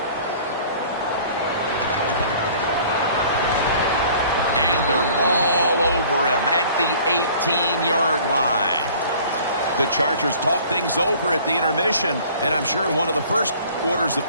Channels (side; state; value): both; inverted; correlation -0.50